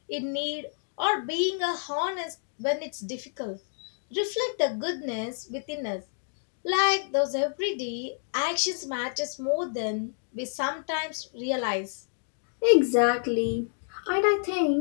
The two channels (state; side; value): silent; right; digital silence